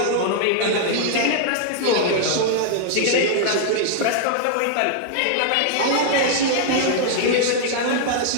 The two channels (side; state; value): both; different; correlation -0.01